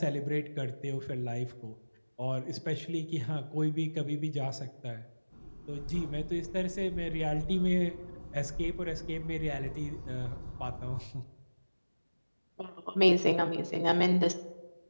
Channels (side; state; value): both; inverted; correlation -1.00